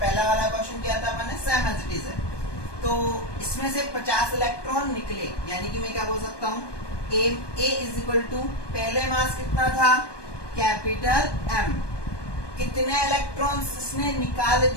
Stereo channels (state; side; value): late; right; 1.2 ms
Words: वाला क्वेश्चन किया था अपने, सेम एज इट इज है। तो इसमें से 50 इलेक्ट्रॉन निकले, यानी कि मैं क्या बोल सकता हूँ, ए इज इक्वल टू पहले मास कितना था, कैपिटल एम। कितने इलेक्ट्रॉन्स इसने निकाल